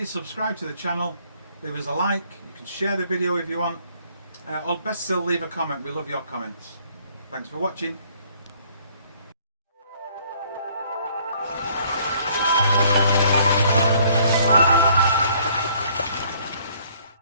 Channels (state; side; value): inverted; both; correlation -0.61